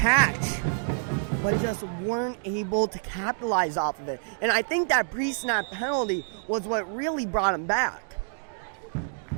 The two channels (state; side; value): silent; left; 60 dB below the other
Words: but just weren't able to capitalize off of it. And I think that pre-snap penalty was what really brought them back.